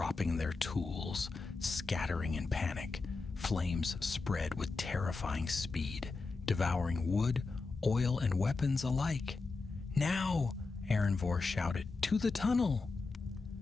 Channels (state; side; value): quieter; right; 4.0 dB